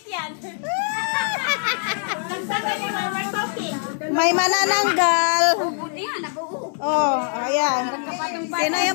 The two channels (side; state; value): right; silent; 64 dB below the other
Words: yan. May manananggal. Buti yan, nabuo. Oh, ayan. Sino